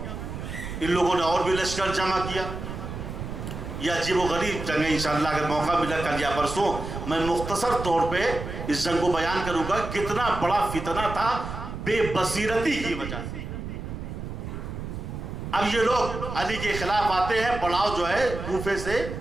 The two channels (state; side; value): noise; right; rumble, 7 dB below the sound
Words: ان لوگوں نے اور بھی لشکر جمع کیا. یہ عجیب و غریب جنگ ہے. انشاءاللہ اگر موقع ملا کل یا پرسوں میں مختصر طور پہ اس جنگ کو بیان کروں گا. کتنا بڑا فتنہ تھا بے بصیرتی کی وجہ سے. اب یہ لوگ علی کے خلاف آتے ہیں, پڑاؤ جو ہے کوفے سے